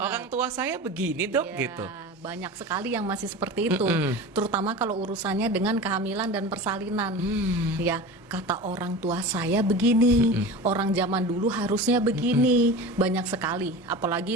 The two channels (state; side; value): normal; both; correlation 0.32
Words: tua saya begini dok gitu. Banyak sekali yang masih seperti itu, terutama kalau urusannya dengan kehamilan dan persalinan. Ya, kata orang tua saya begini, orang zaman dulu harusnya begini. Banyak sekali,